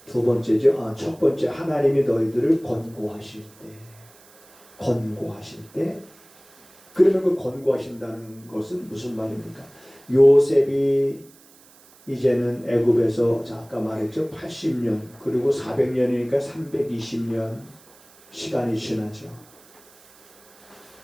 두 번째죠. 첫 번째 하나님이 너희들을 권고하실 때 그러면 그 권고하신다는 것은 무슨 말입니까? 요셉이 이제는 애굽에서 아까 말했죠. 80년 그리고 400년이니까 320년 시간이 지나죠.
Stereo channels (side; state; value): right; noise; hiss, 26 dB below the sound